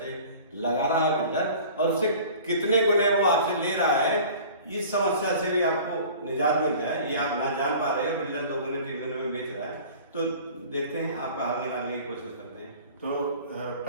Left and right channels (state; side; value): inverted; both; correlation -0.44